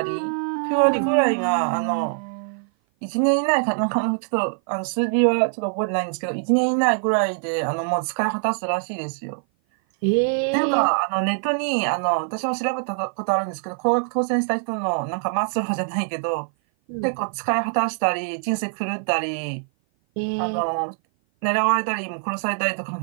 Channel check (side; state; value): left; silent; 56 dB below the other